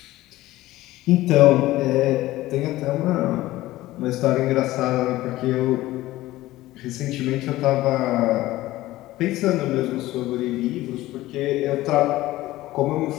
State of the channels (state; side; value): quieter; right; 16.8 dB